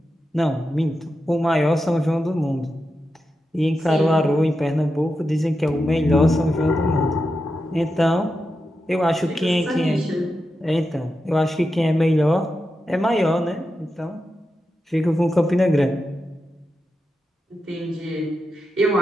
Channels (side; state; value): both; normal; correlation 0.89